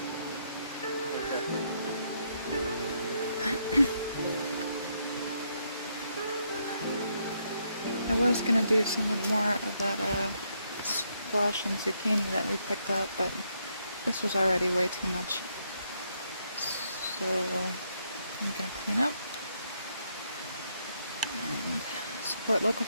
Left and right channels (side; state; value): both; inverted; correlation -0.75